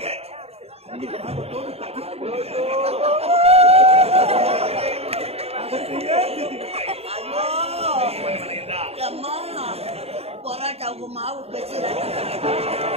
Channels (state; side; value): late; left; 0.29 ms